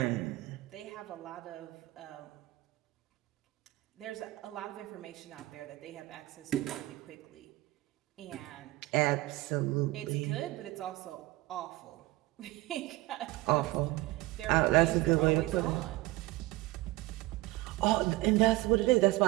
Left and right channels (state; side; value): quieter; left; 19.4 dB